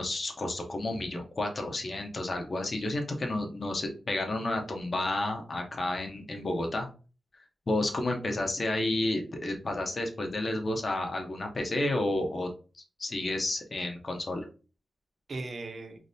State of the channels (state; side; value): normal; both; correlation 0.91